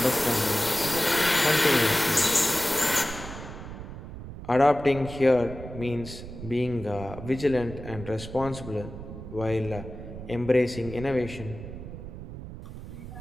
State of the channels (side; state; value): right; noise; rumble, 11 dB below the sound